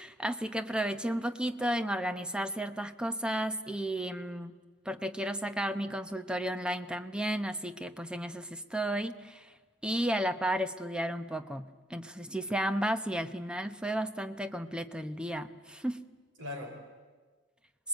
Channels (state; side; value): normal; both; correlation 0.76